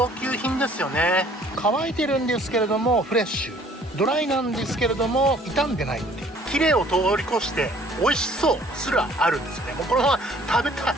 級品ですよね。乾いてるんですけれどもフレッシュ、ドライなんですけれども傷んでないっていう、綺麗を通り越して美味しそうすらあるんですよね。もうこのまま食べたい、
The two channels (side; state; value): both; normal; correlation 0.56